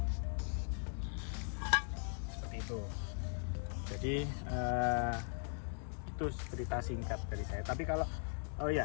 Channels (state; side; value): silent; right; 51 dB below the other